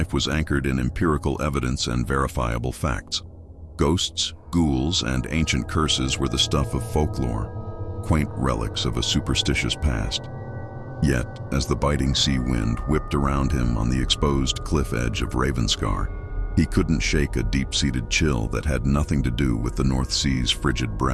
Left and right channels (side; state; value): both; identical; correlation 1.00